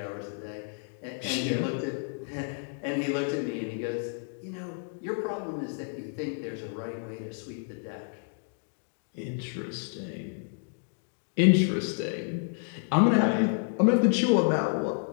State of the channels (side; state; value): right; silent; 58 dB below the other